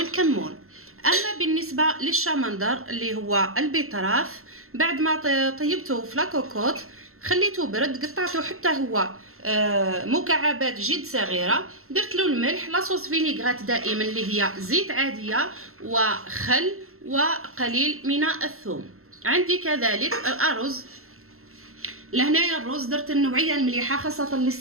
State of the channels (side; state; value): left; late; 0.62 ms